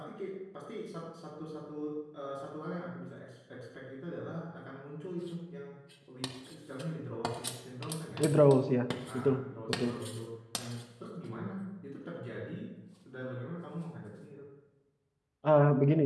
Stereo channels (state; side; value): identical; both; correlation 1.00